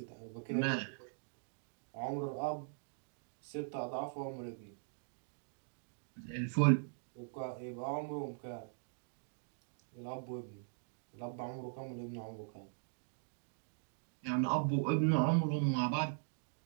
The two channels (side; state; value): left; silent; digital silence